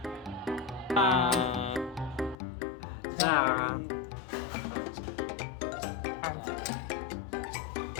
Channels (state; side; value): drops out; right; at 2.4 s